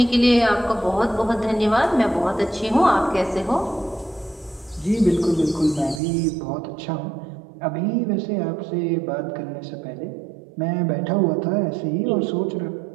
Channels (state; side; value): drops out; left; at 6.0 s